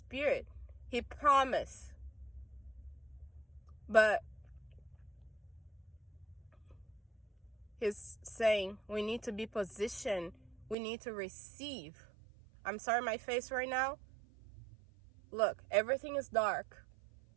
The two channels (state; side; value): drops out; left; at 10.8 s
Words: He promised. But He's saying we need to be positioned. We need to receive. I'm sorry, my face right now. Look, everything is dark.